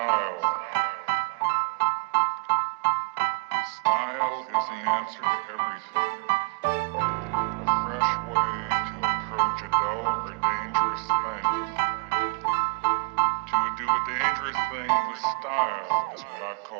Style is the answer to everything. A fresh way to approach a dull or dangerous thing. To do a dangerous thing with style is what I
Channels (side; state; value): left; quieter; 28.6 dB